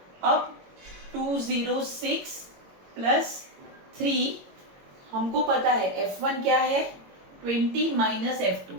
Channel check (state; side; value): late; left; 22 ms